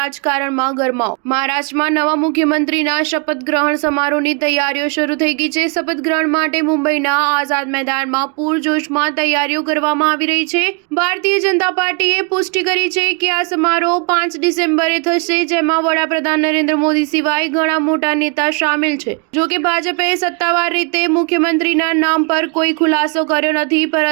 ગરમાવો. મહારાષ્ટ્રમાં નવા મુખ્યમંત્રીના શપથ ગ્રહણ સમારોહની તૈયારીઓ શરૂ થઈ ગઈ છે. શપથ ગ્રહણ માટે મુંબઈના આઝાદ મેદાનમાં પૂરજોશમાં તૈયારીઓ કરવામાં આવી રહી છે. ભારતીય જનતા પાર્ટીએ પુષ્ટિ કરી છે કે આ સમારોહ 5 ડિસેમ્બરે થશે, જેમાં વડાપ્રધાન નરેન્દ્ર મોદી સિવાય ઘણા મોટા નેતા સામેલ છે. જોકે ભાજપે સત્તાવાર રીતે મુખ્યમંત્રીના નામ પર કોઈ ખુલાસો કર્યો નથી,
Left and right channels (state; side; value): quieter; left; 33.5 dB